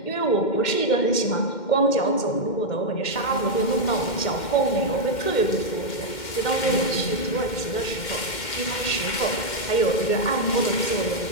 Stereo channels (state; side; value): late; right; 2.1 ms